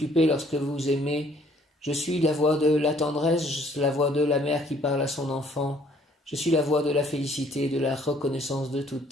lorsque vous aimez, je suis la voix de la tendresse, la voix de la mère qui parle à son enfant, je suis la voix de la félicité, de la reconnaissance de tout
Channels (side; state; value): both; normal; correlation 0.61